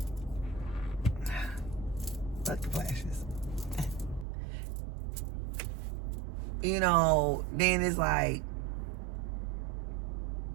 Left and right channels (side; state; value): left; drops out; at 4.2 s